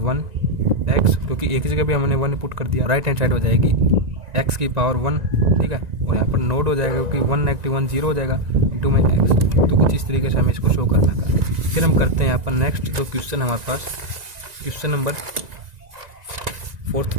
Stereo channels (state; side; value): late; left; 1.9 ms